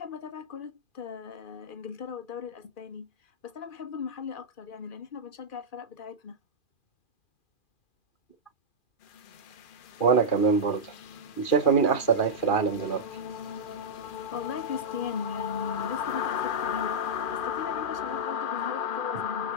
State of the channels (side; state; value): right; late; 2.4 ms